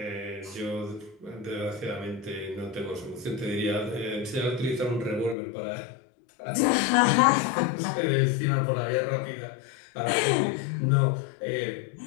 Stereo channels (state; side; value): drops out; right; at 5.4 s